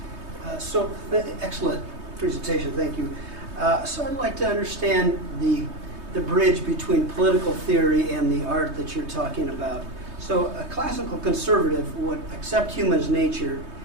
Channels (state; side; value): late; left; 3.2 ms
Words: Excellent presentation, thank you. So I'd like to understand the bridge between political theory and the art that you're talking about. So a classical conservative would accept human's nature